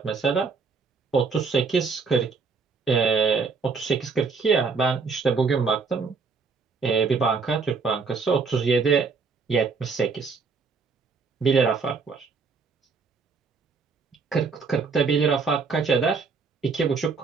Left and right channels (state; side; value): quieter; left; 4.9 dB